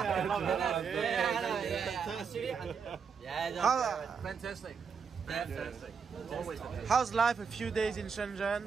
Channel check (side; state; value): left; quieter; 6.1 dB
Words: love it. Fantastic. Fantastic. Always fantastic. How's life a few days in Shenzhen?